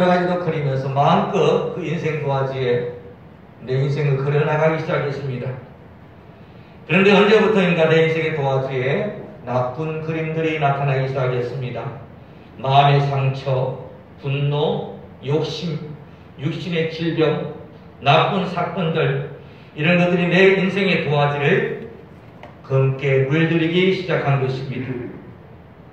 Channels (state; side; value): identical; both; correlation 1.00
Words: 가지도 그리면서 마음껏 그 인생 도화지에 내 인생을 그려나가기 시작했습니다. 그런데 언제부터인가 내 인생의 도화지에 나쁜 그림들이 나타나기 시작했습니다. 마음의 상처, 분노, 욕심, 육신의 질병, 나쁜 사건들, 이런 것들이 내 인생의 도화지를 검게 물들이기 시작한 것입니다.